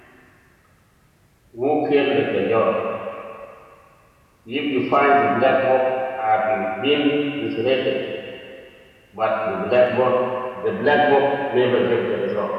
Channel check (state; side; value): identical; both; correlation 1.00